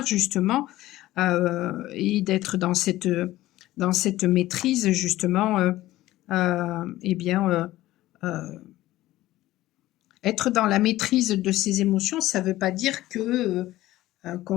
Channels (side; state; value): right; quieter; 16.0 dB